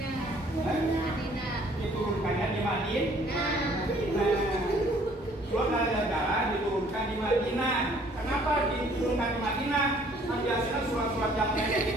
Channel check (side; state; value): both; normal; correlation 0.58